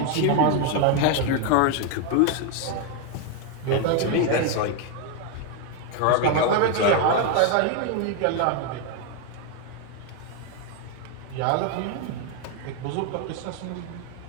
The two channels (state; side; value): different; both; correlation 0.01